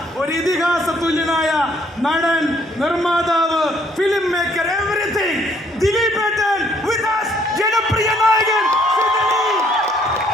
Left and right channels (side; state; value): both; normal; correlation 0.65